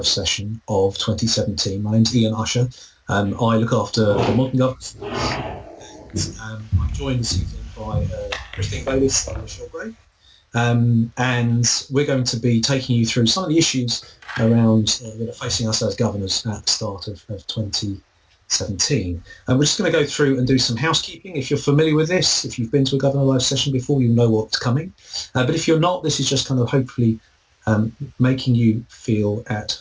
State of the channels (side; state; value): both; identical; correlation 1.00